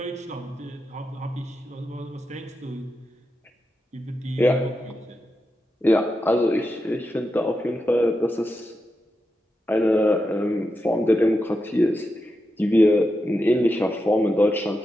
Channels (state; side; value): normal; both; correlation 0.88